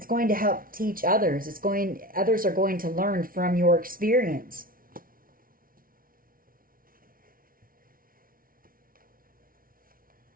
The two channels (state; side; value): late; left; 0.42 ms